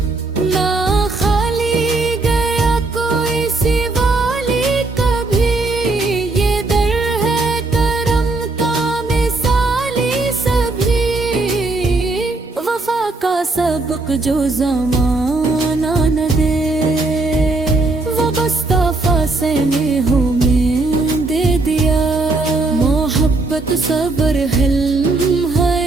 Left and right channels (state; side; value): quieter; left; 3.3 dB